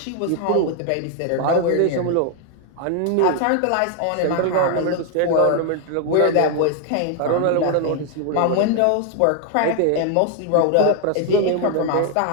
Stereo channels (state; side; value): different; both; correlation 0.00